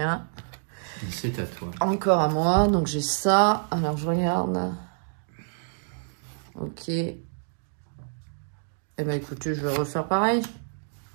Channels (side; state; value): left; silent; digital silence